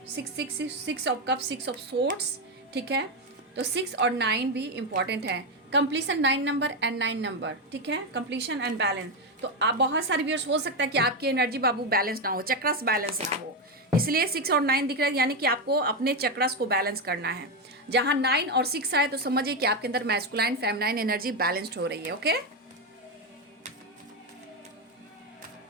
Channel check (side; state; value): both; normal; correlation 0.08